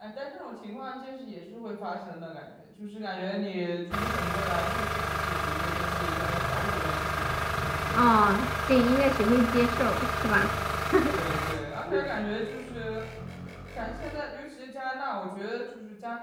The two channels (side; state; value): both; identical; correlation 1.00